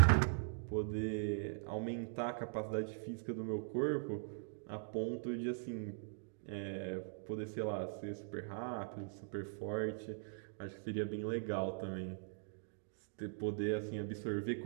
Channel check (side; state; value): left; silent; digital silence